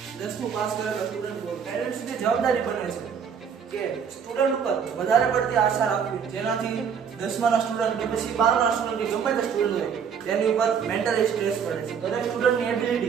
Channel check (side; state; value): left; quieter; 7.1 dB